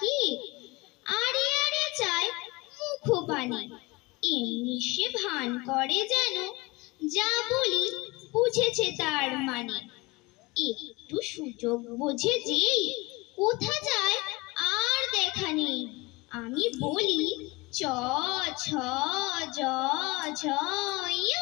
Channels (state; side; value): quieter; right; 23.6 dB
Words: আরে আরে চায় মুখপানি। এমনি সে ভান করে যেন যা বলি বুঝেছে তার মানে। একটু সুযোগ বোঝে যেই কোথা যায় আর দেখা নেই। আমি বলি চ ছ জ ঝ য়,